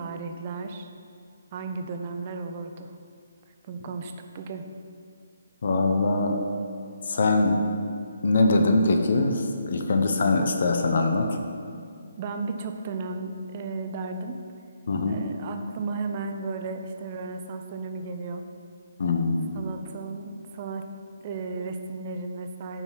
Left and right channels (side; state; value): both; inverted; correlation -0.75